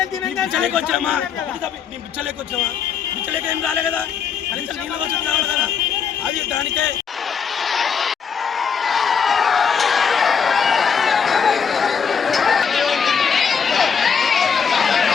వచ్చామా? మేము పిచ్చలేక వచ్చామా? పిచ్చలేక ఏం రాలే కదా, కనీసం నీళ్ళ వసతి కావాలి కదా. అది దానికే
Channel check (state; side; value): quieter; right; 6.6 dB